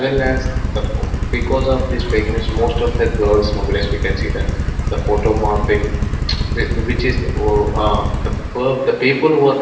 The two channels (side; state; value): both; identical; correlation 1.00